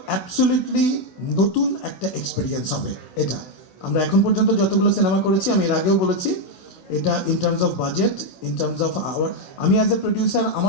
অ্যাবসলিউটলি নতুন একটা এক্সপিরিয়েন্স হবে এটা। আমরা এখন পর্যন্ত যতগুলো সিনেমা করেছি, আমি এর আগেও বলেছি, এটা in terms of budget, in terms of our, আমি অ্যাজ এ প্রডিউসার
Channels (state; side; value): late; right; 16 ms